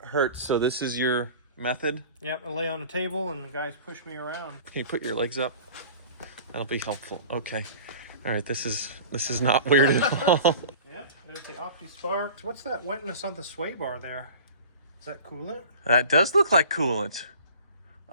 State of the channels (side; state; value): both; inverted; correlation -0.41